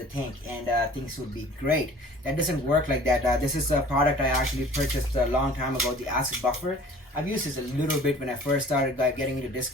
tank and things would be great. That doesn't work like that. This is a product I actually purchased a long time ago, the acid buffer. I've used this a little bit when I first started getting into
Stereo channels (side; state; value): both; normal; correlation 0.47